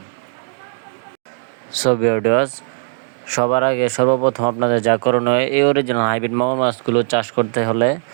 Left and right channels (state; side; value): silent; left; digital silence